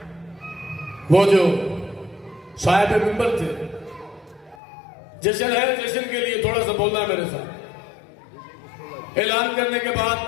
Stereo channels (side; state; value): right; drops out; at 4.5 s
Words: वो जो साहिब मिंबर थे, जश्न है, जश्न के लिए थोड़ा सा बोलना मेरे साथ। ऐलान करने के बाद